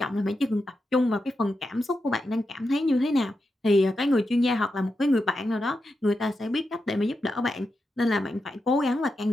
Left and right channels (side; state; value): both; normal; correlation 0.88